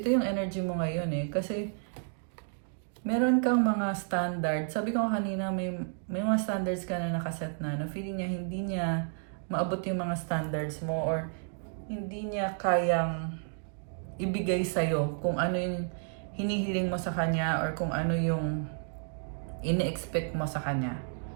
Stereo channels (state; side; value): silent; left; 57 dB below the other